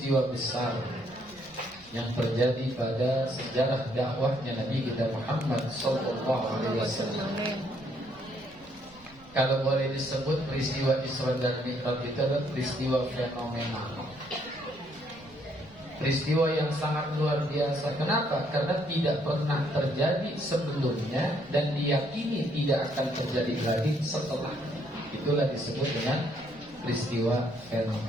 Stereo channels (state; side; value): noise; right; rumble, 25 dB below the sound